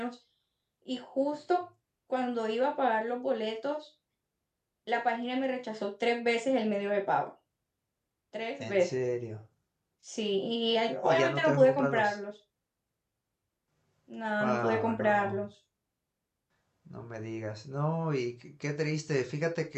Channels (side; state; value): both; identical; correlation 1.00